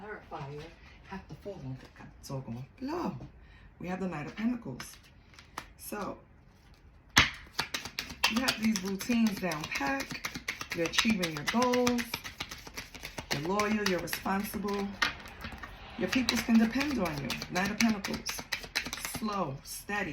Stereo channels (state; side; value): identical; both; correlation 1.00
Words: have to fall on the on low? We have the Knight of Pentacles. So, you have these routines down pat. You're achieving your goals. You're loyal. You're responsible. Your peoples can depend on you. Knight of Pentacles. Slow,